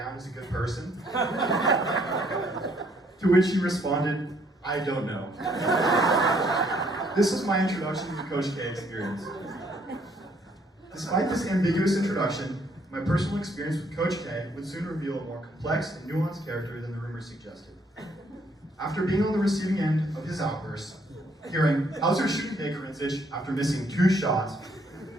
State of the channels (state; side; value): normal; both; correlation 0.67